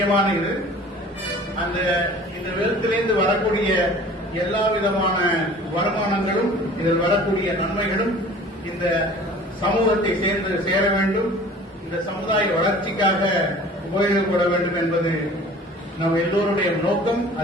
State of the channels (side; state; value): both; normal; correlation 0.46